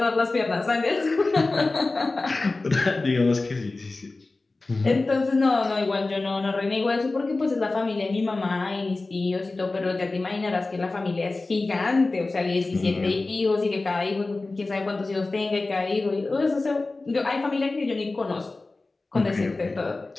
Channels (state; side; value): quieter; right; 3.3 dB